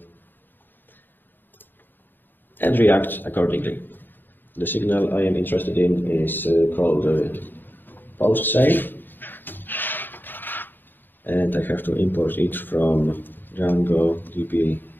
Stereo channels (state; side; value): late; right; 0.093 ms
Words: and react accordingly. The signal I am interested in is called post save, and I have to import it from Django DB